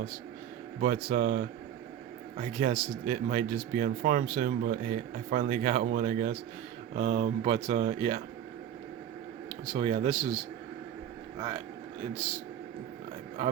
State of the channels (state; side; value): quieter; left; 10.2 dB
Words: But I guess it might just be on farm soon. But hey, I finally got one, I guess. But yeah. So yeah, this is it's